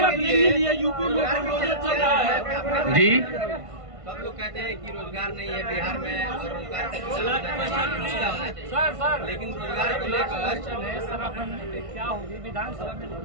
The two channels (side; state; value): left; late; 1.5 ms